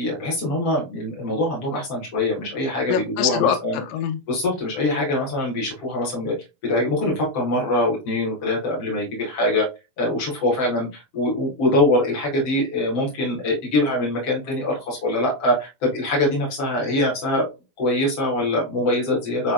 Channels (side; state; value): right; late; 7.6 ms